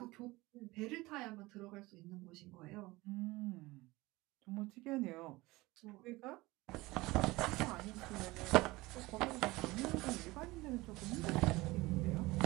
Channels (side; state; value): left; quieter; 20.8 dB